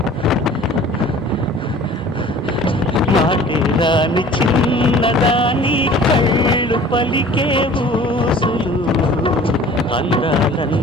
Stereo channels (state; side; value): normal; both; correlation 0.46